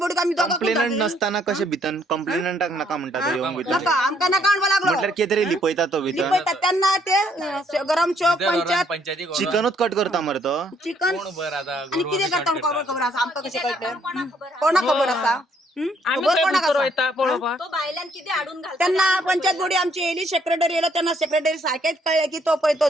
आमी कंप्लेनंट नसताना कशे भितर कंप्लेनंटाक नाका म्हणटा तो येवंक भितर नाका आमकां नाका म्हणपा लागलो. म्हटल्यार कितें तरी लिपयता तो भितर लिपयता तेन्ना ते गरम चौक पंचायत चिकनूच कट करता मरे तो. चिकन आनी कितें करता खबर आसा आमकां कशें कळटलें कोणाक खबर आसा. आम्ही खबर खंय कोणाक भितर आसा? वयता पळोवपाक तो बायलांक किती हाडून घालता त्यांना पंचायत बोर्डी आमची येयली, सेक्रेटरी येयलो तेन्ना सेक्रेटरी सारखेच कळले की तो पळय तो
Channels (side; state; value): both; normal; correlation 0.68